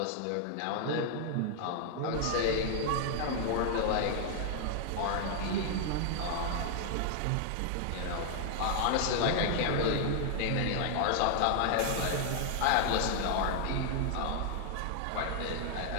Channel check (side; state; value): both; different; correlation 0.00